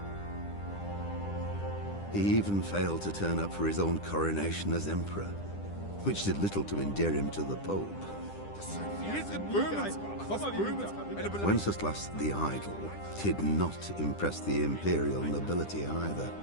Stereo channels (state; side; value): late; right; 10 ms